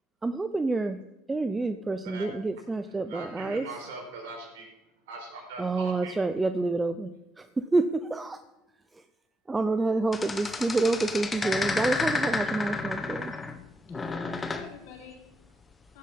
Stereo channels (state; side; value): normal; both; correlation 0.86